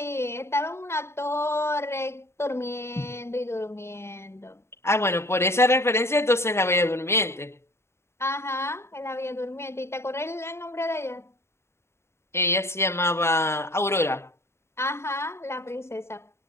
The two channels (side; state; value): right; late; 0.13 ms